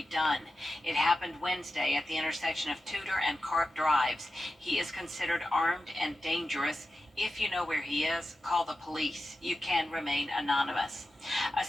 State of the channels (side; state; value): both; normal; correlation 0.92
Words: Dunn. It happened Wednesday at the intersection of Tudor and Carp Drives. He is considered armed and dangerous. If you know where he is, call the police. You can remain anonymous. A